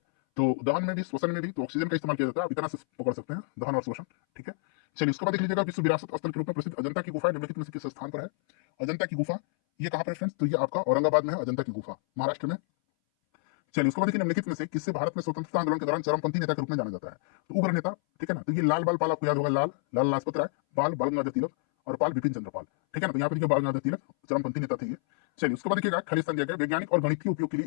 तो दहन में भी श्वसन में भी तो ऑक्सीजन का इस्तेमाल किया जाता है, आप इतना से पकड़ सकते हैं, दहन और श्वसन, ठीक है। चलिए उसके बाद देख लीजिएगा विश्व विरासत स्थल के रूप में प्रसिद्ध अजंता की गुफा निम्नलिखित में से किस स्थान पर है, अजंता की गुफा ये कहां पर है फ्रेंड्स, तो ये आपका औरंगाबाद में है, अजंता की गुफा महाराष्ट्र में। चलिए उसके बाद देखिए निम्नलिखित में से किससे भारत में स्वतंत्रता आंदोलन के दौरान चरमपंथी नेता के रूप में जाना जाता है, तो उग्र नेता, ठीक है ना, तो ये लाल बाल पाल आपको याद होगा, लाल लाजपत राय, बाल बाल गंगाधर तिलक और पाल बिपिन चंद्र पाल, ठीक है ना, तो यहाँ पे देखिए बाल गंगाधर तिलक चरमपंथी नेता थे ये। चलिए उसके बाद देखिएगा खालिस्तान दिया गया वैज्ञानिक और गणितीय उपयोग के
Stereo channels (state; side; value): silent; right; 59 dB below the other